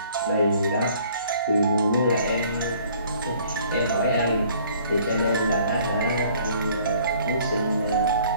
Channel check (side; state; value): both; inverted; correlation -0.57